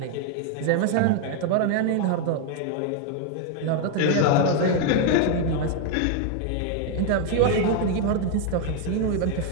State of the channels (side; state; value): both; different; correlation 0.01